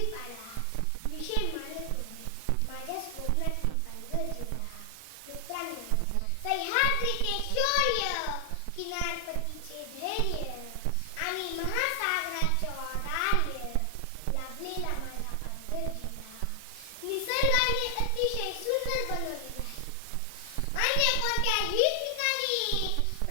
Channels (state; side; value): different; both; correlation 0.00